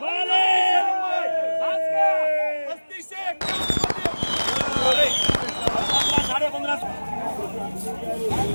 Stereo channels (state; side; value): inverted; both; correlation -1.00